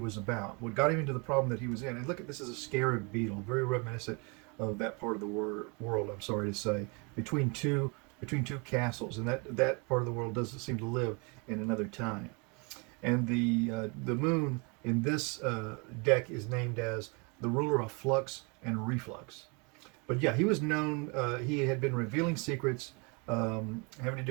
about, what got him into the problem that he was in. And look at this as a scarab beetle, very reminiscent of that part of the world, I'm sorry to say, between two castles. And that part of the world doesn't seem to live in another time. And the Moon in this deck is named as the ruler of flux and reflux. But yeah, he was known, he had been revealing secrets having to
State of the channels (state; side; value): quieter; left; 31.8 dB